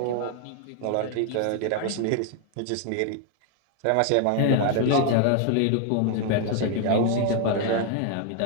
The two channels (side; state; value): both; different; correlation 0.00